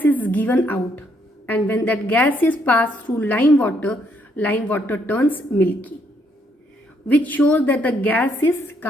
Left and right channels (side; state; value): both; normal; correlation 0.72